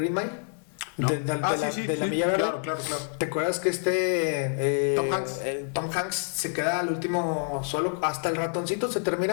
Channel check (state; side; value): silent; right; 60 dB below the other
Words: Mile? No. De la Milla Verde. Claro. ¿Te acuerdas que Tom Hanks se queda al último solo, hasta el ratoncito se